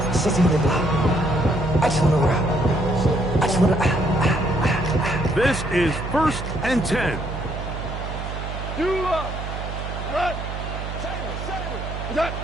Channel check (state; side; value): noise; right; hum, 7 dB below the sound